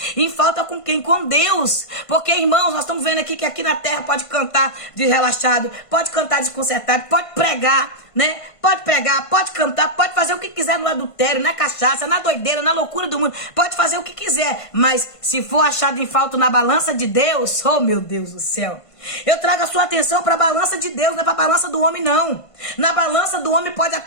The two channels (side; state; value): right; late; 1.5 ms